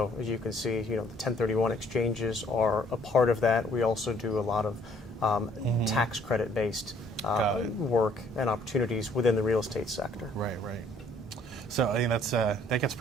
as you can see, the 1031 exchanges are a part of that. We also do a lot of tax credit-based work and opportunities within the real estate sector. Right. So I mean that gets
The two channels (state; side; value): normal; both; correlation 0.62